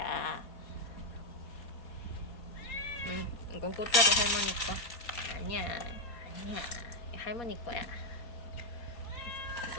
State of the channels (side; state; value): right; late; 4.2 ms